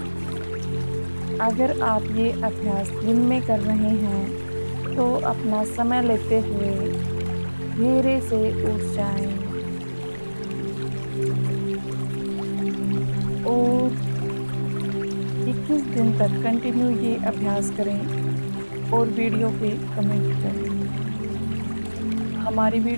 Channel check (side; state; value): both; inverted; correlation -1.00